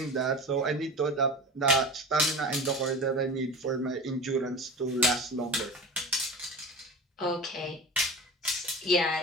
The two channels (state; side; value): normal; both; correlation 0.33